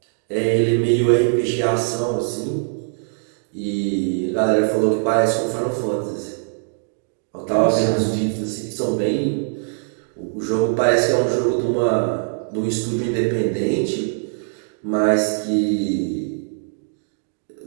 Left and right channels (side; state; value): left; silent; digital silence